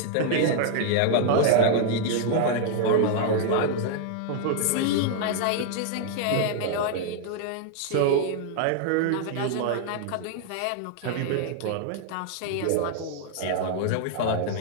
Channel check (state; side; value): different; both; correlation 0.00